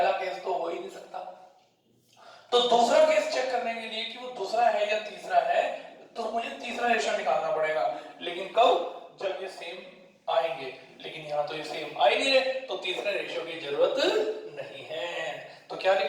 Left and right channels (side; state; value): both; identical; correlation 1.00